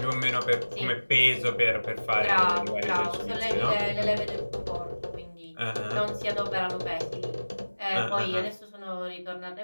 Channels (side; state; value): both; inverted; correlation -1.00